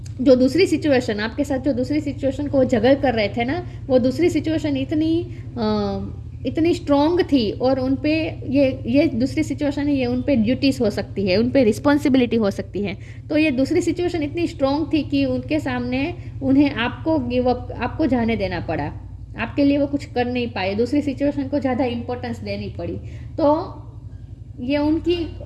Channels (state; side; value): identical; both; correlation 1.00